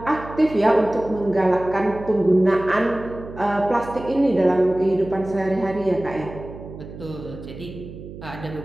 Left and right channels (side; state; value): right; noise; hum, 14 dB below the sound